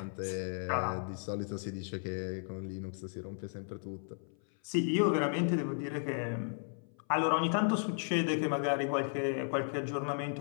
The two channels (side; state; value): right; silent; 55 dB below the other